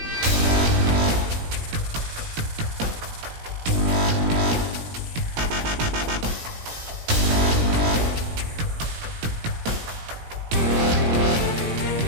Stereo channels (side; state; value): left; late; 17 ms